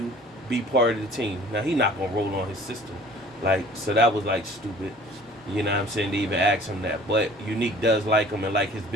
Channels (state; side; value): normal; both; correlation 0.49